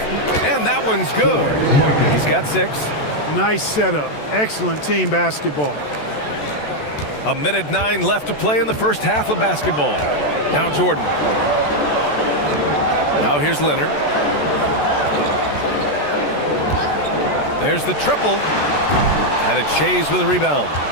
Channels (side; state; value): right; late; 14 ms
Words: And that one's good. He's got 6. Nice setup. Excellent team basketball. A minute 9 left to play in the first half of basketball. Now Jordan. Now here's Leonard. There's the triple. And it's Shays with a rebound.